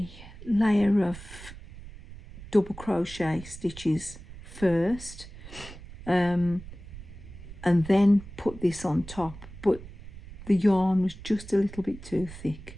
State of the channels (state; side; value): noise; right; rumble, 15 dB below the sound